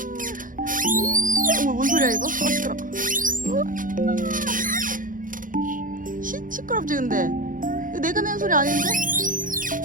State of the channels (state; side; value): late; left; 0.39 ms